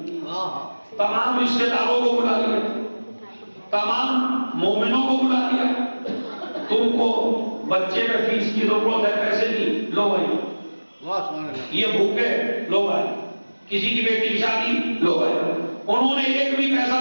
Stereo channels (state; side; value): inverted; both; correlation -1.00